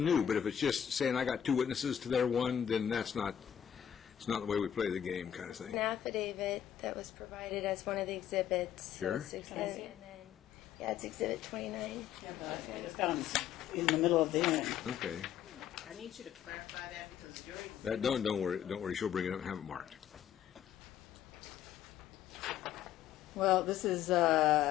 but if it's just saying I got two witnesses to their one, then that's not, it's not the way we play the game kind of thing. An affidavit that was provided as one of the exhibits. Sure. Yeah, it's Exhibit 29. Yeah, but it's down in the middle of the end. Okay. I need you to clarify that because you're... That, don't worry, she'll bring it up and have it marked. Well, this is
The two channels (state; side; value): quieter; right; 10.0 dB